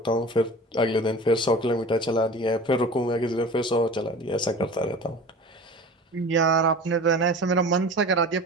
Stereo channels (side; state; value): both; normal; correlation 0.38